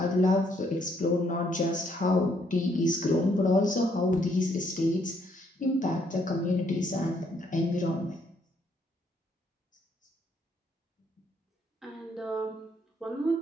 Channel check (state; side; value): normal; both; correlation 0.70